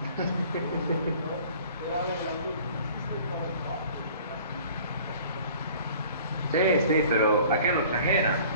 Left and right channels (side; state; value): both; inverted; correlation -0.49